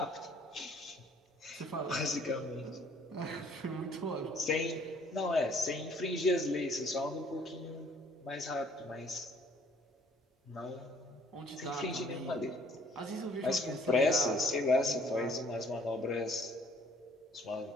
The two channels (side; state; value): both; normal; correlation 0.59